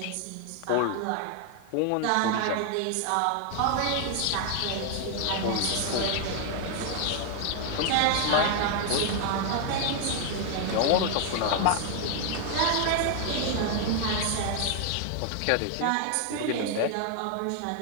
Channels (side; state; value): both; different; correlation 0.00